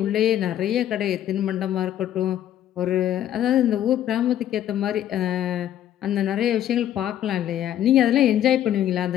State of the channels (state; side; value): quieter; right; 11.4 dB